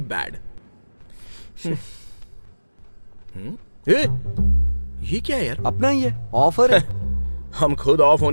बैड। ये क्या है यार? अपना ही है, ऑफर है। हम खुद ऑफ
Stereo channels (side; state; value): both; inverted; correlation -1.00